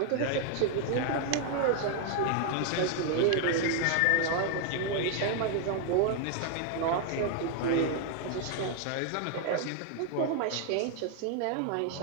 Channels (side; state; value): both; different; correlation 0.00